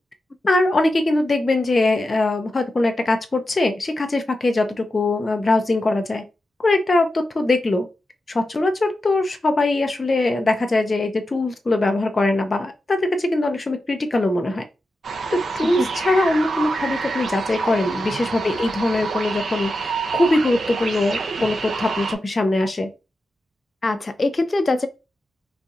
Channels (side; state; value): both; normal; correlation 0.90